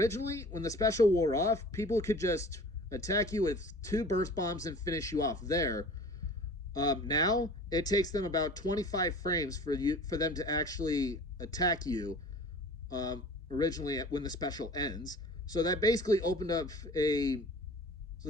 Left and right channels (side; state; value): both; normal; correlation 0.43